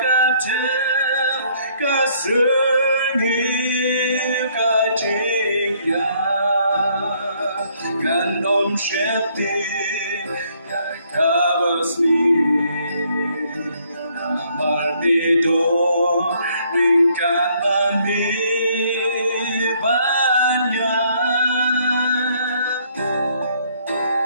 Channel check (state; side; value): inverted; both; correlation -0.66